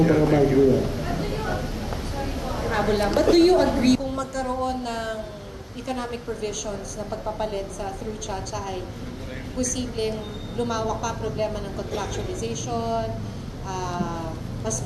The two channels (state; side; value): identical; both; correlation 1.00